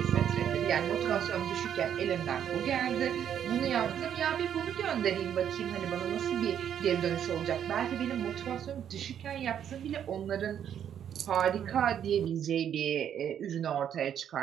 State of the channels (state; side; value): quieter; left; 9.3 dB